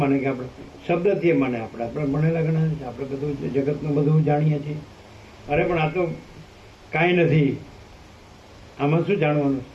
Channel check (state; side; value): identical; both; correlation 1.00